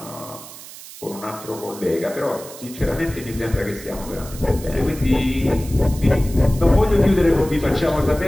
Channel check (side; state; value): right; noise; hiss, 16 dB below the sound